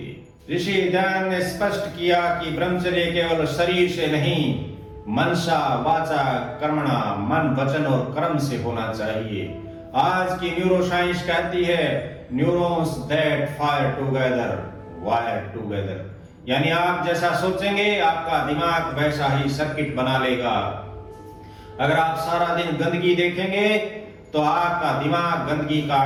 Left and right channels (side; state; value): both; identical; correlation 1.00